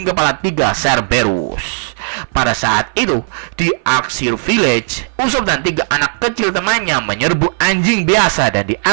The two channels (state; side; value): silent; left; 57 dB below the other